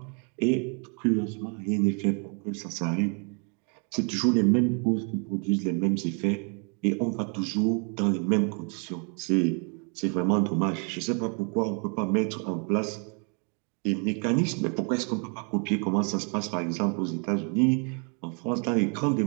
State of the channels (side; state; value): left; quieter; 38.6 dB